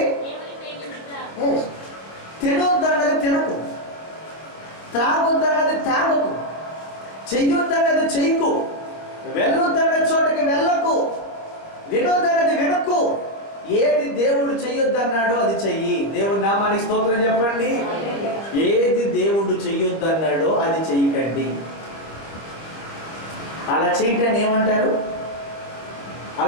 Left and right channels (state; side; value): late; right; 26 ms